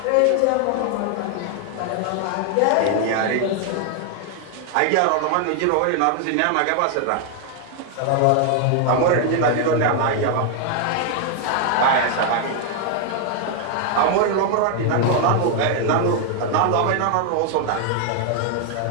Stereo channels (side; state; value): both; different; correlation 0.00